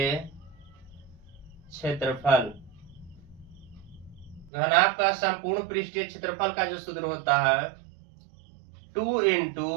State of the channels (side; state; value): left; drops out; at 4.5 s